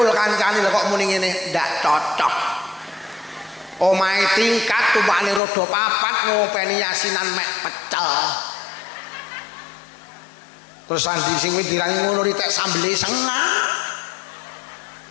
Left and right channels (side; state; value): right; drops out; at 5.4 s